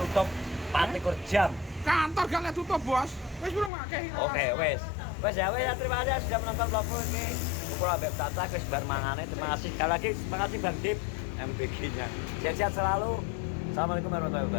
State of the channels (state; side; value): drops out; right; at 3.7 s